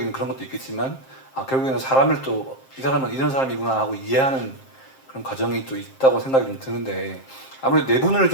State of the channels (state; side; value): late; right; 7.6 ms